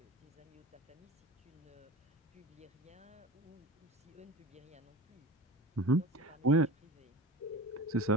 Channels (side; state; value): both; normal; correlation 0.34